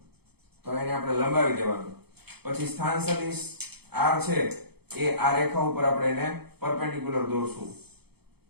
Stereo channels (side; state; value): left; late; 0.97 ms